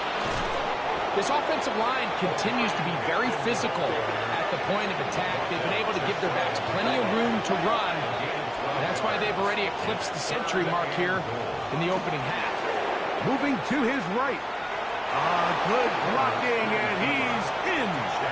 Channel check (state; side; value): identical; both; correlation 1.00